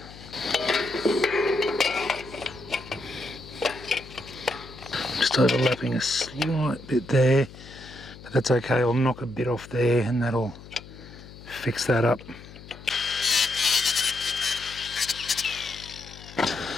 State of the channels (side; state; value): left; noise; hum, 17 dB below the sound